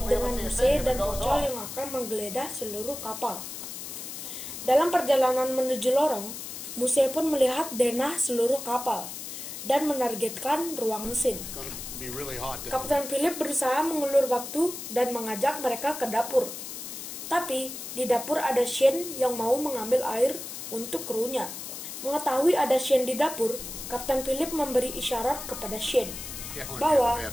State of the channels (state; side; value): noise; left; hiss, 9 dB below the sound